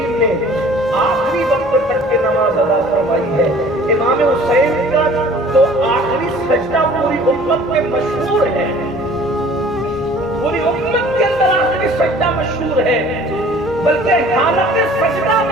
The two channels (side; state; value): both; normal; correlation 0.50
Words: نے آخری وقت تک کی نماز ادا فرمائی ہے۔ امام حسین کا تو آخری سجدہ پوری امت میں مشہور ہے، پوری امت کے اندر آخری سجدہ مشہور ہے، بلکہ حالت سجدہ